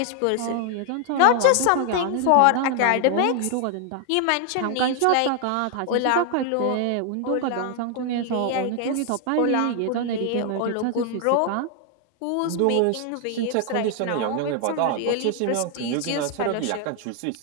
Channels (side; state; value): both; different; correlation 0.00